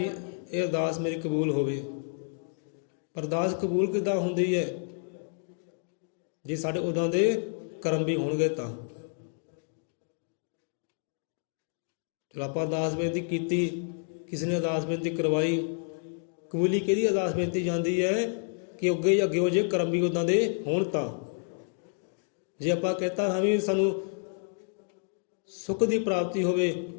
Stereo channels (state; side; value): silent; right; 58 dB below the other